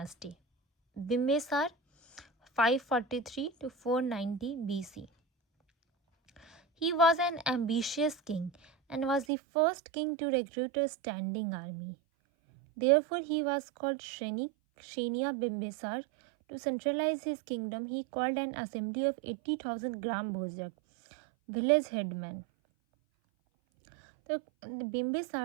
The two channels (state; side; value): drops out; left; at 9.2 s